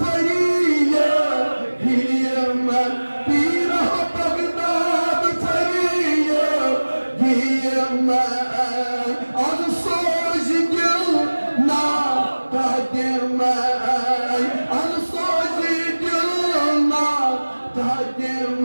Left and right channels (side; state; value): both; inverted; correlation -1.00